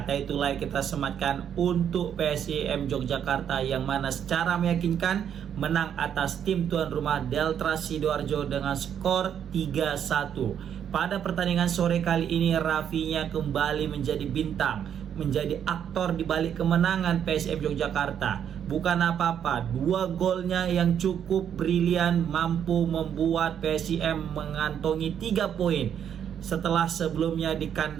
itulah yang kita sematkan untuk PSIM Yogyakarta yang mana secara meyakinkan menang atas tim tuan rumah Deltras Sidoarjo dengan skor 3-1. Pada pertandingan sore kali ini Rafinya kembali menjadi bintang, menjadi aktor di balik kemenangan PSIM Yogyakarta. Bukan apa-apa, 2 golnya yang cukup brilian mampu membuat PSIM mengantongi 3 poin setelah sebelumnya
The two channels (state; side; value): quieter; left; 8.9 dB